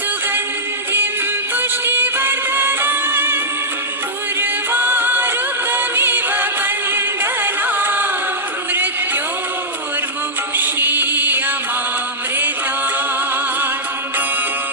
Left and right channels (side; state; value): both; normal; correlation -0.09